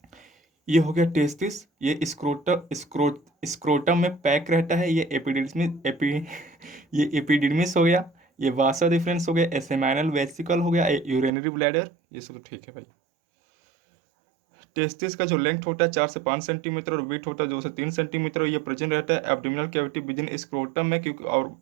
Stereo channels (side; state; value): left; drops out; at 11.3 s